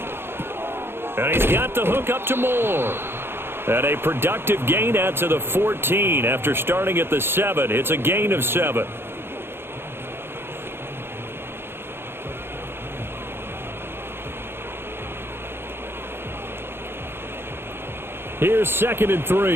And he's got the hook up to Moore. And a productive gain out to the 14 after starting at the 7. It's a gain of 7. Here's 2nd and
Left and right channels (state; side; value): late; left; 0.11 ms